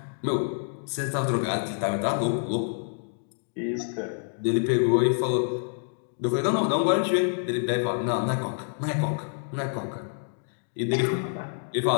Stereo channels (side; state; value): right; silent; digital silence